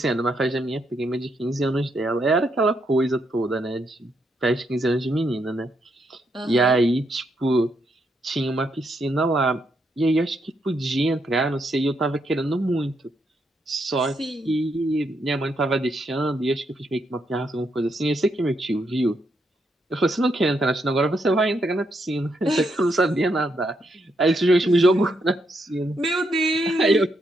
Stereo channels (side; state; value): both; normal; correlation 0.78